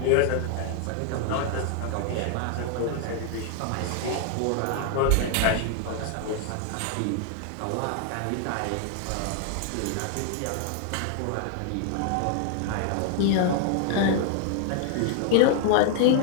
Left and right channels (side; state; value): both; different; correlation 0.00